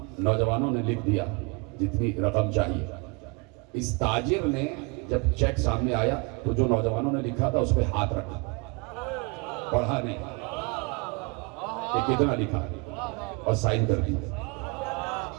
نوجوانوں نے لکھ دیا جتنی رقم چاہیے. اس تاجر نے جب چیک سامنے آیا تو جو نوجوانوں نے لکھا تھا اس پہ ہاتھ رکھا، پڑھا نہیں کہ کتنا لکھا اور سائن کر دی.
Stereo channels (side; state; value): left; quieter; 29.9 dB